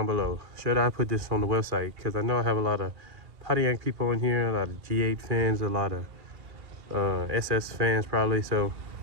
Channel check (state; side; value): late; left; 2.2 ms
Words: below. Should I put this on the website? Because I know I have a lot of Pontiac people in here, a lot of G8 fans, a lot of SS fans probably. So